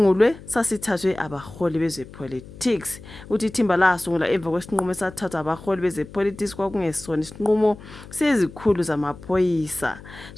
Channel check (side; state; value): left; noise; hum, 17 dB below the sound